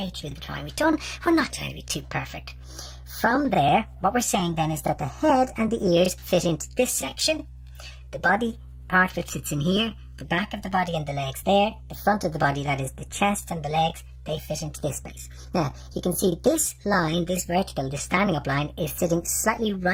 through the drawing. We're not trying to be too perfect. From there, what we're saying then is that the head and the ears fit into this section, the body part of it fits in here, the back of the body and the legs there, the front of the body, that is the chest and the legs, they fit into this space. Now, you can see this line, this vertical, this standing up line, is sitting slightly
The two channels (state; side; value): identical; both; correlation 1.00